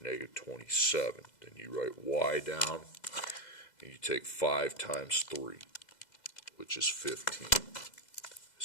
27. Then you write y down, and you take 5 times 3, which is 15.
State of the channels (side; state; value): right; late; 2.0 ms